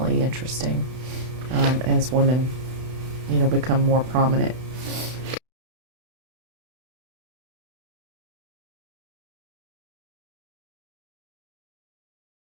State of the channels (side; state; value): left; late; 32 ms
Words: interesting as women, become more prominent